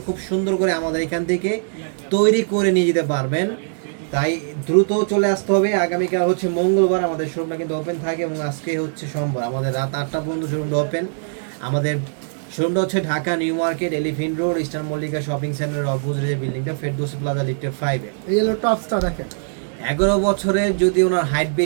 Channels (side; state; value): left; silent; digital silence